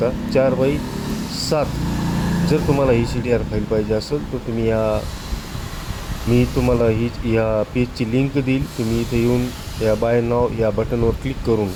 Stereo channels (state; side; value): identical; both; correlation 1.00